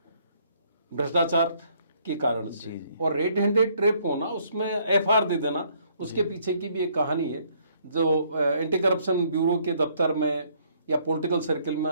भ्रष्टाचार के कारण से। जी। और रेड हैंडेड ट्रेप होना, उसमें एफआईआर दे देना, उसके पीछे की भी एक कहानी है जो एंटी करप्शन ब्यूरो के दफ्तर में या पॉलिटिकल सर्कल में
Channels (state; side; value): inverted; both; correlation -0.66